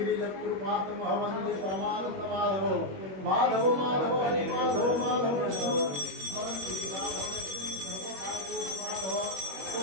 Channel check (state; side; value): late; left; 21 ms